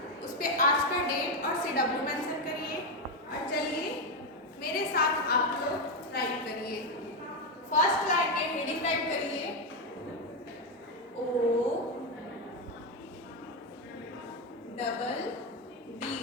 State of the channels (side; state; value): both; normal; correlation 0.07